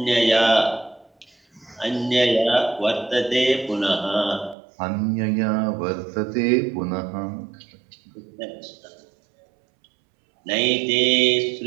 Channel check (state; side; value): drops out; left; at 4.5 s